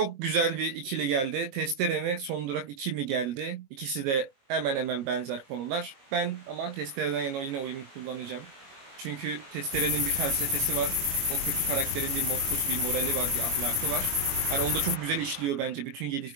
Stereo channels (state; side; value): late; left; 22 ms